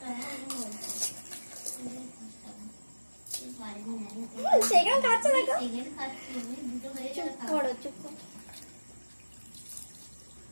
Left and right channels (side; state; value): both; inverted; correlation -1.00